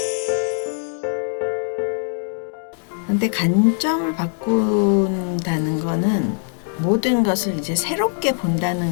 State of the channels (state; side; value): silent; right; 65 dB below the other